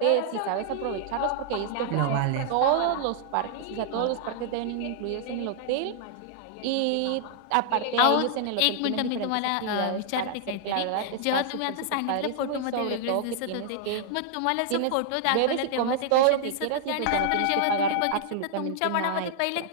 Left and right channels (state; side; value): different; both; correlation -0.01